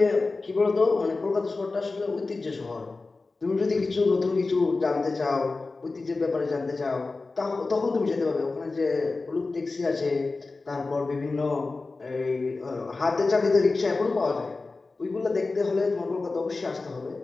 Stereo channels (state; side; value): quieter; right; 3.7 dB